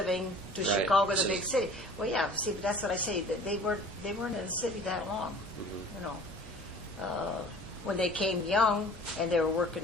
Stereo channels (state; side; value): normal; both; correlation 0.47